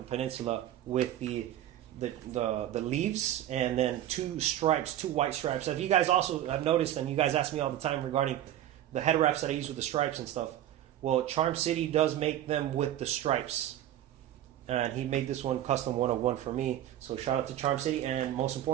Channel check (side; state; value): left; quieter; 12.3 dB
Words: Peninsula with the leaves and then two white stripes. If you guys also have noticed, and you guys ask me all the time regarding the head wraps that I use with the stripes and stuff, well, Charm City does make them with the stripes, and he made this one custom one-of-one for me. So shout out to Charm City, and most